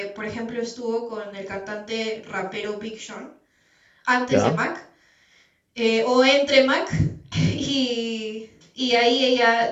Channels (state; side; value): identical; both; correlation 1.00